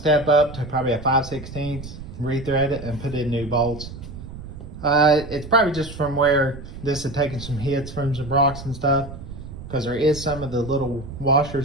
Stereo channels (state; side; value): noise; right; rumble, 12 dB below the sound